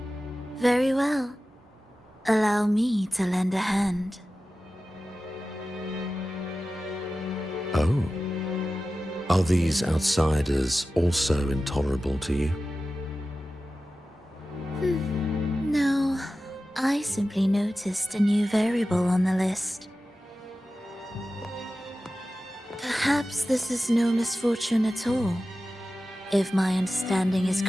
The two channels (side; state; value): both; normal; correlation 0.94